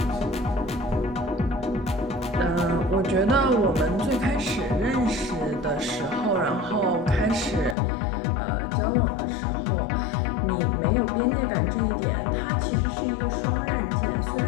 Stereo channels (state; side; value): drops out; right; at 7.8 s